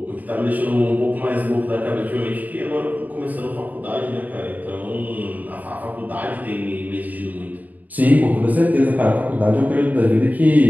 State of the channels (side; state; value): left; late; 0.079 ms